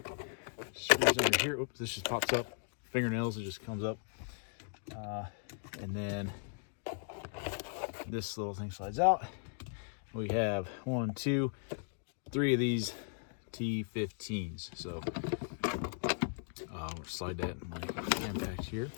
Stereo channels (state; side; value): silent; right; digital silence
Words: screws under here. Oops, this just pops up. Fingernails, it just comes up. And then this little thing slides out. We have 1, 2, 3 of these T15s. So we'll slide that in my impact here.